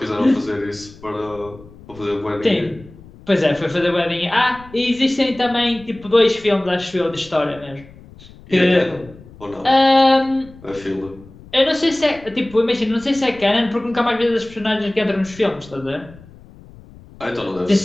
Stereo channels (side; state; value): left; noise; rumble, 21 dB below the sound